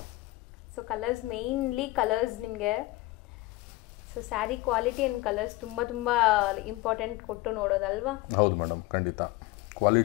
ಸೊ ಕಲರ್ಸ್ ಮೇನ್ಲಿ ಕಲರ್ಸ್ ನಿಮಗೆ so sari quality and colours ತುಂಬ ಇಂಪಾರ್ಟೆಂಟ್ ಕೊಟ್ಟು ನೋಡೋದಲ್ವಾ? ಹೌದು ಮೇಡಮ್, ಖಂಡಿತ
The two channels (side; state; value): right; quieter; 20.1 dB